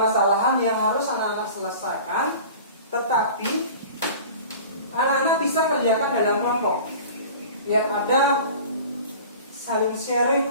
yang harus anak-anak selesaikan, tetapi anak-anak bisa kerjakan dalam kelompok. Biar ada saling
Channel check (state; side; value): inverted; both; correlation -0.41